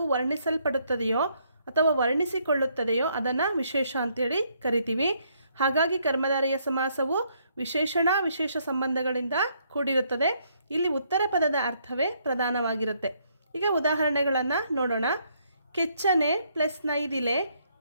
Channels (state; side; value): inverted; both; correlation -0.71